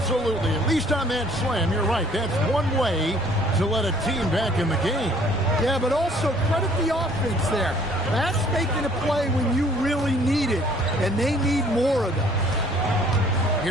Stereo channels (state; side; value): normal; both; correlation 0.58